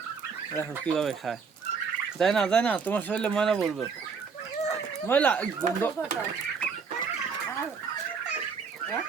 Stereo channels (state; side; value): quieter; left; 5.5 dB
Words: দেখো কিভাবে খায়। যায় না, যায় না, তোমার শরীরে ময়লা পড়বে, ময়লা গন্ধ।